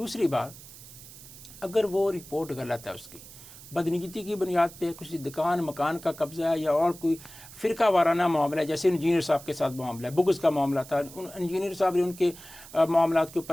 بات، اگر وہ رپورٹ غلط ہے، اس کی بدنیتی کی بنیاد پہ کچھ دکان مکان کا قبضہ ہے یا اور کوئی فرقہ وارانہ معاملہ ہے، جیسے انجینئر صاحب کے ساتھ معاملہ ہے، بغض کا معاملہ تھا، انجینئر صاحب نے ان کے معاملات کے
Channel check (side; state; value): right; noise; hiss, 17 dB below the sound